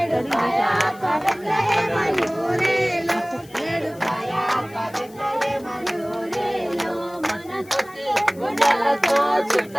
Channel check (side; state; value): left; noise; hiss, 24 dB below the sound